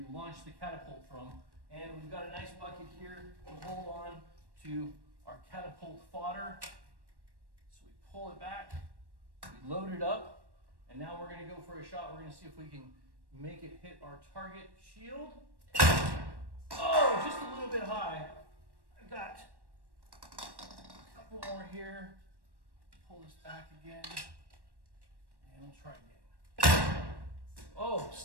launch the catapult from. And we've got a nice bucket here to hold on to our catapult fodder. So we pull it back, we load it up, and now we're going to go for a shot. We're going to see if we can make it hit our target shield. Oh, just a little bit high. I've got a couple more here. Pull this back again, and we'll try again. Oh,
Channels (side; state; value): left; late; 1.1 ms